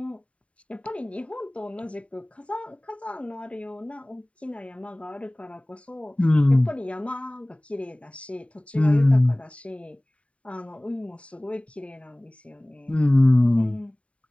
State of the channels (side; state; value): right; late; 0.064 ms